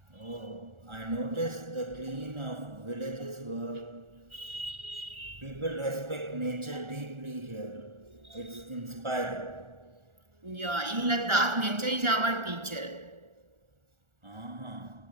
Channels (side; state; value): left; late; 1.4 ms